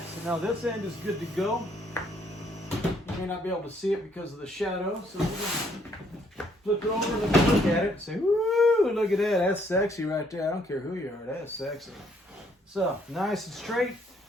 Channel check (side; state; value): both; normal; correlation 0.67